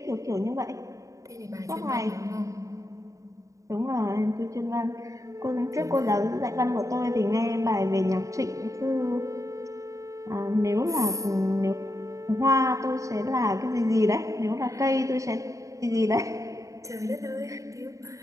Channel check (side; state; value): left; late; 0.16 ms